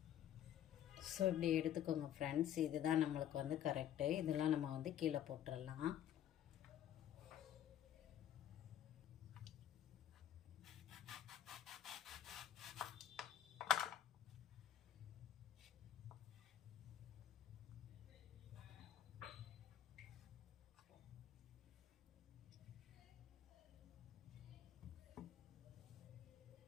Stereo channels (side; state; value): right; quieter; 10.9 dB